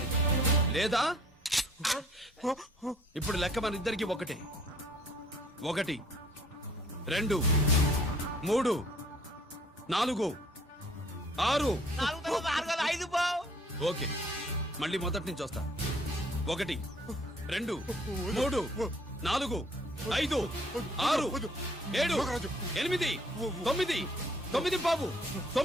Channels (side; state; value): both; normal; correlation 0.58